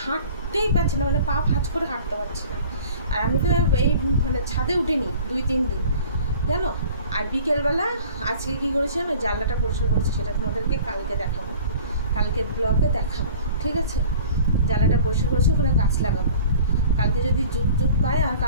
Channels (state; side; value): inverted; both; correlation -0.46